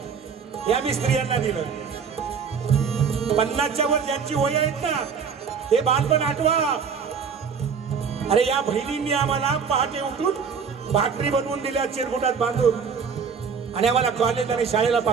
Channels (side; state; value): left; quieter; 6.2 dB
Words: या मी स्त्रियांना दिलं. 50च्या वर ज्यांची वय आहेत ना ते बालपण आठवा. अरे या बहिणींनी आम्हाला पहाटे उठून भाकरी बनवून दिल्या चिरगुटात बांधून, आणि आम्हाला कॉलेज आणि शाळेला